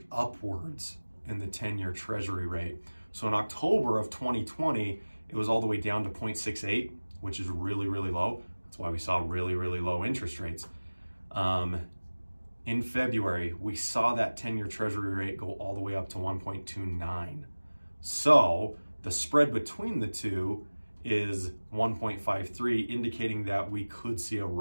upwards in the 10-year Treasury rate. So in October of 2020, it was all the way down to 0.68, which is really, really low. That's why we saw really, really low interest rates. In February, we saw that 10-year Treasury rate go all the way up to 1.29. So the spread between the two is 1.53, indicating that we could see a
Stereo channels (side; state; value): both; inverted; correlation -1.00